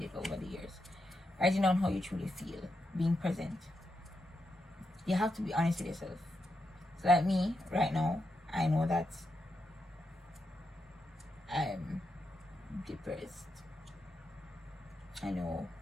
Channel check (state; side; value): normal; both; correlation 0.85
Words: over the years. Writing down how you truly feel. Being present. You have to be honest with yourself. So like me, right now, I know that I'm depressed. I know